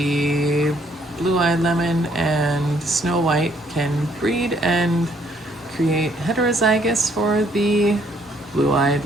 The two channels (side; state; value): both; normal; correlation 0.67